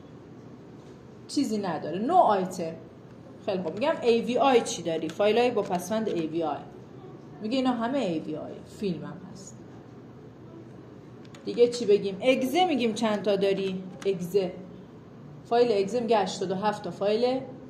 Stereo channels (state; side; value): identical; both; correlation 1.00